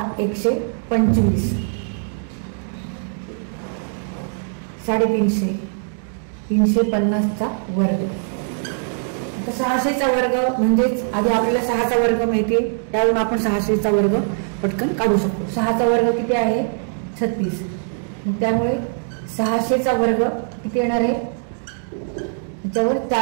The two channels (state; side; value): silent; left; digital silence